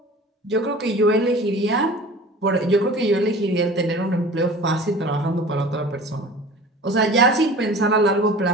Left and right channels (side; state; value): both; normal; correlation 0.41